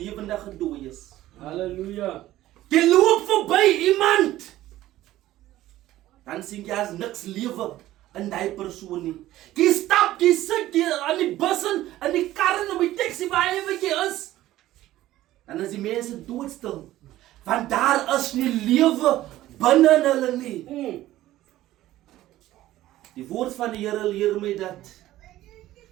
dooies. Halleluja. Jy loop verby iemand. Dan sien jy as niks lewe in die persoon nie. Jy stap, jy sit jy aan die bus en in die kar en op die taxi waar jy is. Dan is die mense doodstil. Want daar is nie lewe binne in hulle nie. Die woord van die Here leer my dat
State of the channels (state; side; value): quieter; left; 14.9 dB